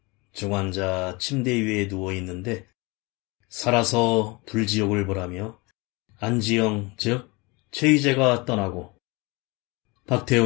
중환자 침대 위에 누워있는데 살아서 불지옥을 보라며 안지영 즉 최희재가 떠나고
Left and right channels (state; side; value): quieter; right; 26.4 dB